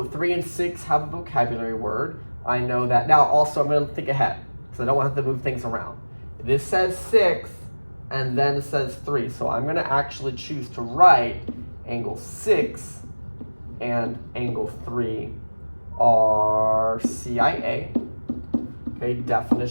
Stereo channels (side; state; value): both; inverted; correlation -1.00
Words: 3 and 6 have a vocabulary word. I know that. Now also I'm going to think ahead, because I don't want to have to move things around. This says 6, and then it says 3. So I'm going to actually choose to write angle 6 and angle 3 are CIA. Okay,